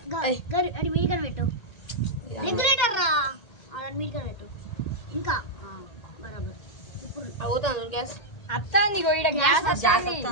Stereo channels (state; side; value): late; right; 1.8 ms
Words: అది మీడిగా పెట్టు, రెగ్యులేటర్ రా, అది మీడిగా పెట్టు. ఇంకా బరాబర్ ఇప్పుడు అవుతాను గ్యాస్ అత్తాంది గోయిడ గ్యాస్ అత్తాంది.